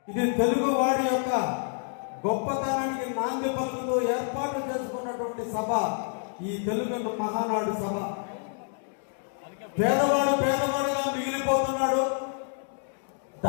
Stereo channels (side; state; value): right; silent; 59 dB below the other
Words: ఇది తెలుగు వారి యొక్క గొప్పతనానికి నాంది పలుకుతూ ఏర్పాటు చేసుకున్నటువంటి సభ ఈ తెలుగు మహానాడు సభ. పేదవాడు పేదవాడుగా మిగిలిపోతున్నాడు,